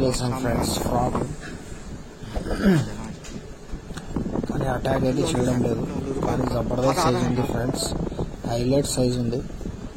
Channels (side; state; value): both; identical; correlation 1.00